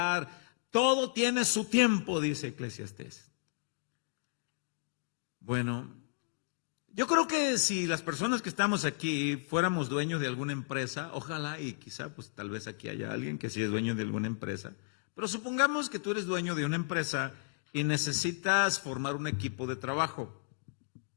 Todo tiene su tiempo, dice Eclesiastés. Bueno, yo creo que si las personas que estamos aquí fuéramos dueños de alguna empresa, ojalá y quizá pues tal vez aquí haya alguien que sí es dueño de alguna empresa, pero supongamos que tú eres dueño de una empresa y necesitas formar un equipo de trabajo.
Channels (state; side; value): silent; right; digital silence